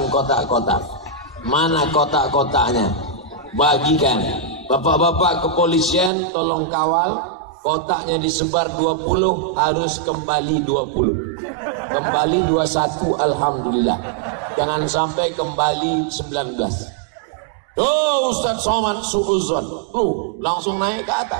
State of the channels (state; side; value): drops out; left; at 6.1 s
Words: kotak-kotak. Mana kotak-kotaknya? Bagikan. Bapak-bapak kepolisian tolong kawal. Kotaknya disebar 20, harus kembali 20. Kembali 21, alhamdulillah. Jangan sampai kembali 19. Oh, Ustaz Somad suuzon. Langsung naik ke